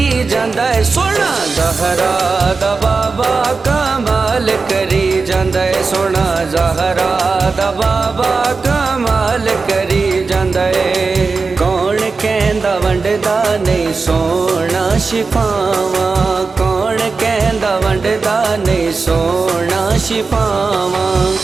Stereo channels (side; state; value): left; quieter; 4.3 dB